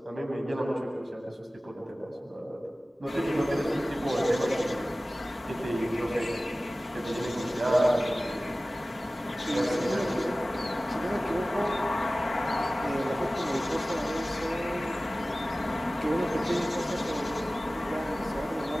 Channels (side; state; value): both; normal; correlation 0.97